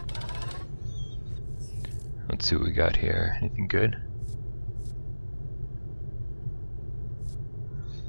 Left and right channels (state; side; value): inverted; both; correlation -1.00